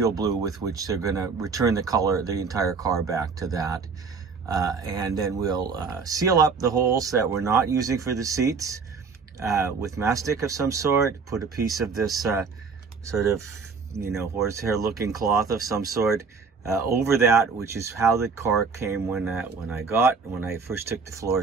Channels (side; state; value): left; quieter; 5.0 dB